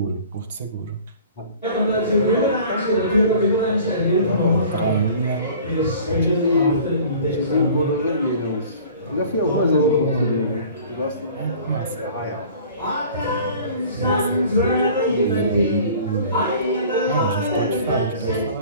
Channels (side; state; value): both; inverted; correlation -0.47